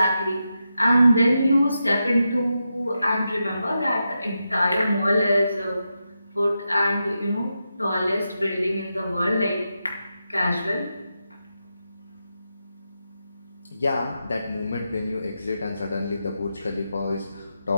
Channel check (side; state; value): both; inverted; correlation -0.87